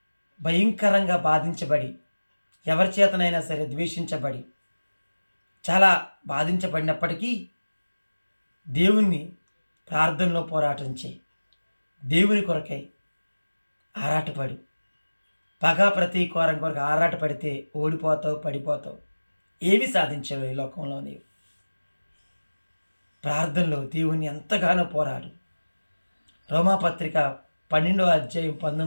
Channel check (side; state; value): both; inverted; correlation -1.00